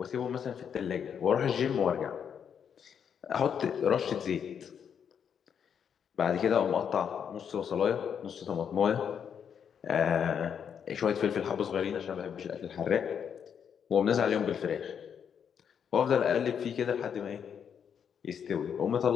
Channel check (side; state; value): right; quieter; 7.7 dB